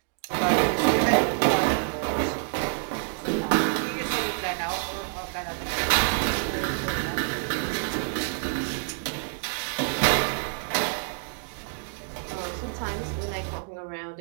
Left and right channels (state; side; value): silent; left; 60 dB below the other